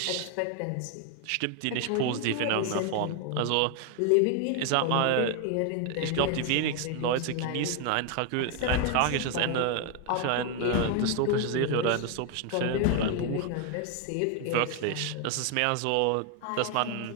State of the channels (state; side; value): different; both; correlation 0.01